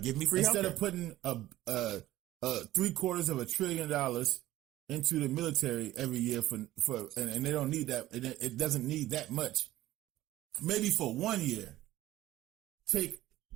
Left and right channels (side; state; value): left; quieter; 15.4 dB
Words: Give me free instead healthcare. of putting $750 billion into the military every year for and they don't need that. It doesn't need that much. Maybe for 1 year,